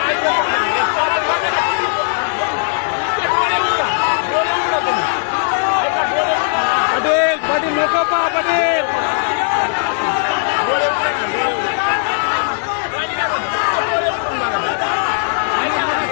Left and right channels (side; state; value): right; silent; digital silence